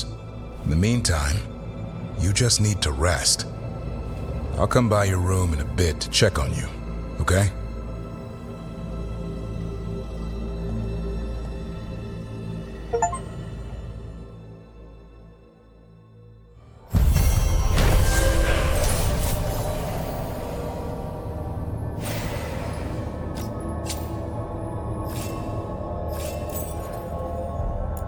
In the meantime, you just need to rest. I'll come by your room in a bit to check on you, okay?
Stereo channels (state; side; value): identical; both; correlation 1.00